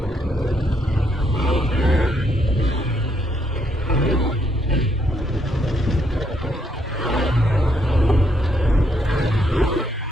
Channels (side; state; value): both; normal; correlation 0.74